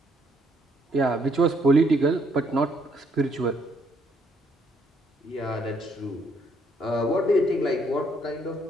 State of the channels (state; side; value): normal; both; correlation 0.70